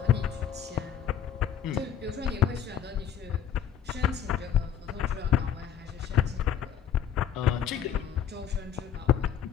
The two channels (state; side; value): quieter; right; 9.0 dB